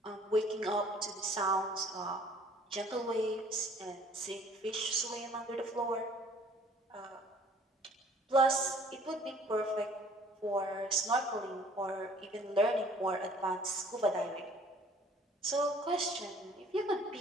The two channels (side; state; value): both; normal; correlation 0.55